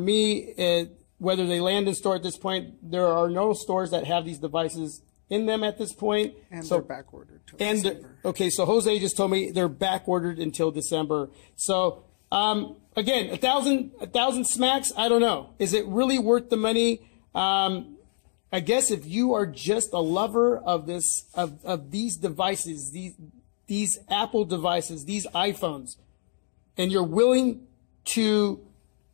whether they land in store at this point, there are no stores that have these devices in them at this point. And so, they're back ordered till December. Okay, so Jose just told me they're back ordered until December. So again, 1,000 smacks, I don't know. Is it really worth the money? I guess if you are just a lover of these devices, these Apple devices, these iPhones, and you're willing to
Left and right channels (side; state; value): right; silent; digital silence